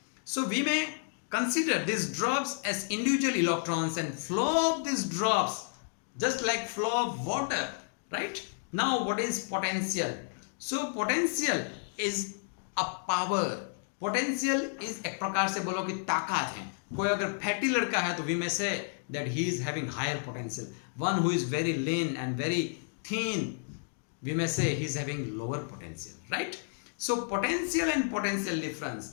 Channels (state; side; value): silent; right; digital silence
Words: So we may consider these drops as individual electrons and flow of these drops just like flow of water, right? Now what is potential? So potential is a power. Potential is एक प्रकार से बोलो कि ताकत है. कोई अगर fatty लड़का है तो we may say that he is having higher potential. One who is very lean and very thin, we may say he is having lower potential, right? So potential and potential